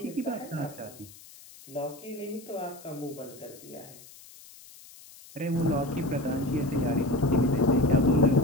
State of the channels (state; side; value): noise; left; hiss, 20 dB below the sound